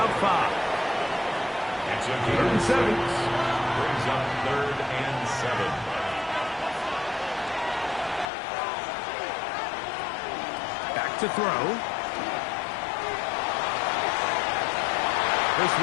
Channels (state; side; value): drops out; right; at 8.2 s